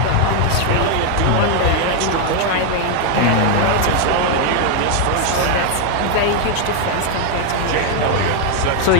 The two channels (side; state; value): both; different; correlation 0.01